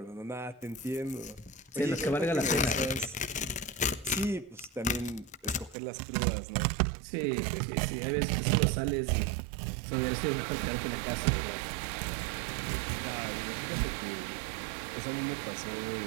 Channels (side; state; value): left; drops out; at 5.8 s